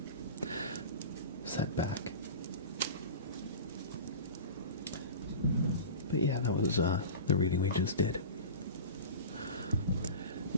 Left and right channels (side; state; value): both; inverted; correlation -0.33